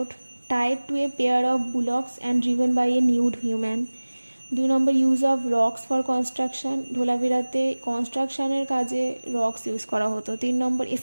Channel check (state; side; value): inverted; both; correlation -1.00